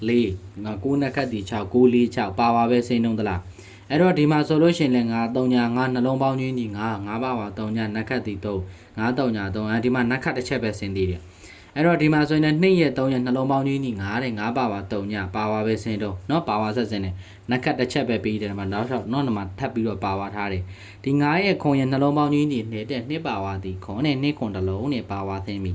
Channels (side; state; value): both; identical; correlation 1.00